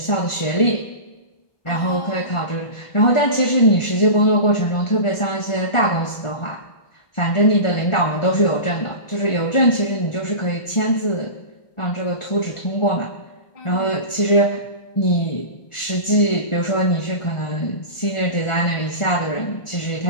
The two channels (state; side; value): late; right; 1.5 ms